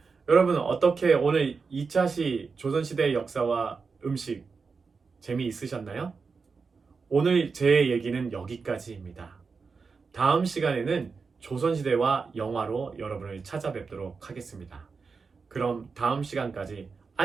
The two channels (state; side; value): quieter; left; 4.9 dB